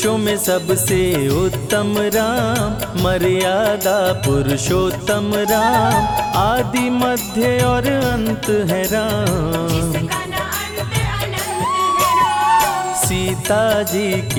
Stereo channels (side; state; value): both; identical; correlation 1.00